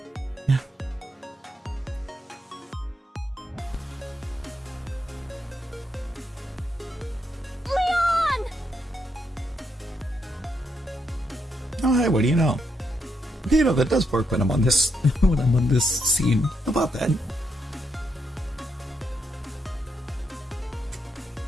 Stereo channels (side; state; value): both; normal; correlation 0.79